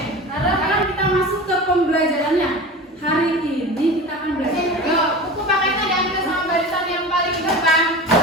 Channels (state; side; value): normal; both; correlation 0.32